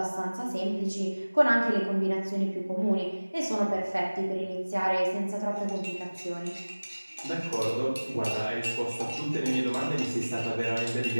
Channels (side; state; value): both; inverted; correlation -1.00